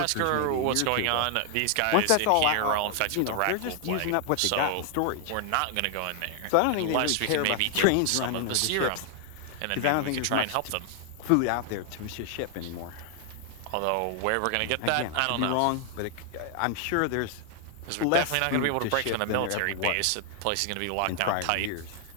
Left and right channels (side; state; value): both; different; correlation 0.00